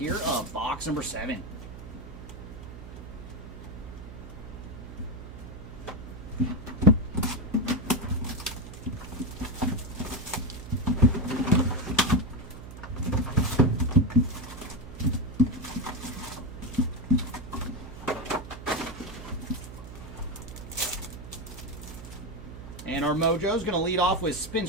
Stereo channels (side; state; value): right; noise; hum, 13 dB below the sound